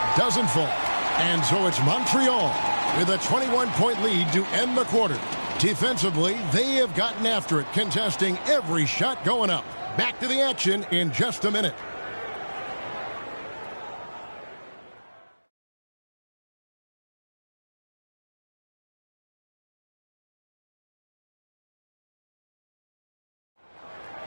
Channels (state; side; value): inverted; both; correlation -1.00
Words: doesn't fall. And so it's Montreal with a 21-point lead to end the quarter. Defensively, they have gotten after it, contesting every shot going up. Back to the action in just a minute.